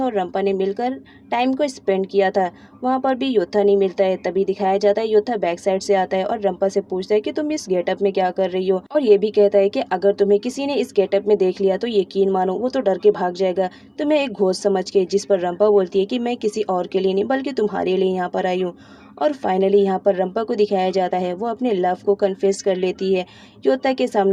और रंपा ने मिलकर टाइम को स्पेंड किया था। वहाँ पर भी योता नहीं मिलता है। तभी दिखाया जाता है योता बैक साइड से आता है और रंपा से पूछता है कि तुम इस गेटअप में क्या कर रही हो, और ये भी कहता है कि अगर तुम्हें किसी ने इस गेटअप में देख लिया तो यकीन मानो वो तो डर के भाग जाएगा, तुम्हें एक घोस्ट समझ के। जिस पर रंपा बोलती है कि मैं किसी और के लिए नहीं बल्कि तुम्हारे लिए यहाँ पर आई हूँ। और फाइनली यहाँ पर रंपा को दिखाया जाता है वो अपने लव को कन्फेस कर लेती है योता के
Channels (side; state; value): both; identical; correlation 1.00